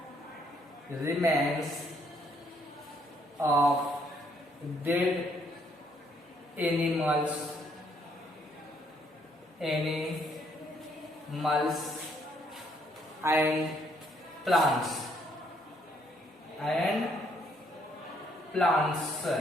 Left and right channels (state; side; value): normal; both; correlation 0.69